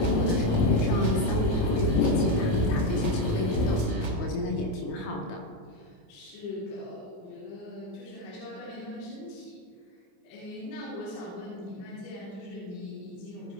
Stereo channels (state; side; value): late; right; 28 ms